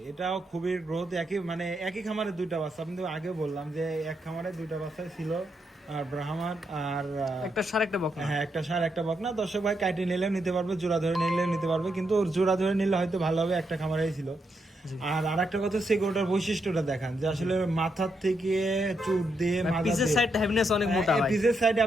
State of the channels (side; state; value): both; normal; correlation 0.81